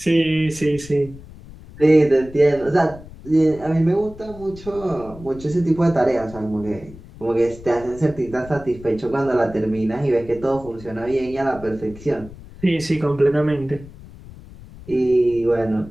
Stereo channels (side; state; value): left; noise; rumble, 18 dB below the sound